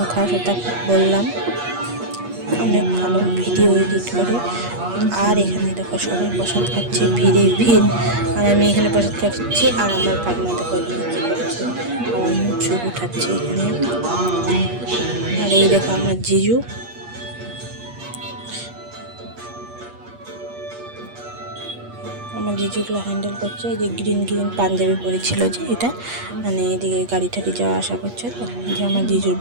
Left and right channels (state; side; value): late; left; 8.4 ms